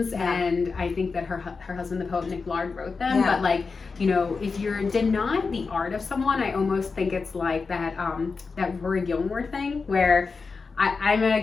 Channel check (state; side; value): quieter; right; 4.6 dB